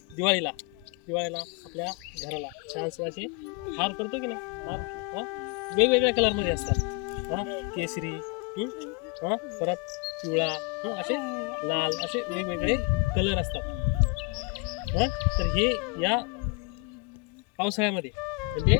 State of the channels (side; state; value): right; quieter; 26.8 dB